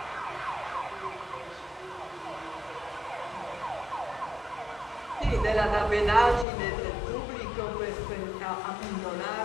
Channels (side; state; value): right; drops out; at 6.5 s